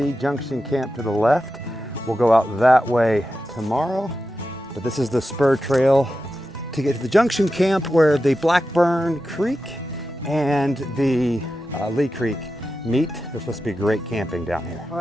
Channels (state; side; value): normal; both; correlation 0.91